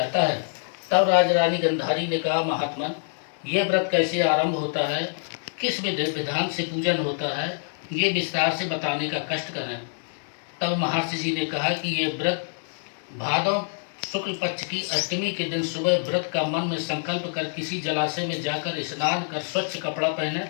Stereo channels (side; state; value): right; silent; digital silence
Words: है। तब राजरानी गंधारी ने कहा, महात्मन, यह व्रत कैसे आरंभ होता है, किस विधान से पूजन होता है, ये विस्तार से बताने का कष्ट करें। तब महर्षि जी ने कहा कि यह व्रत भादव शुक्ल पक्ष की अष्टमी के दिन सुबह व्रत का मन में संकल्प कर किसी जलाशय में जाकर स्नान कर स्वच्छ कपड़ा पहने,